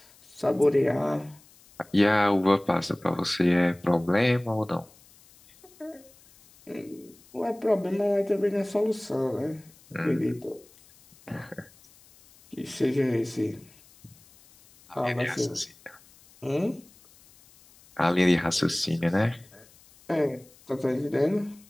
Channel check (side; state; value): left; noise; hiss, 27 dB below the sound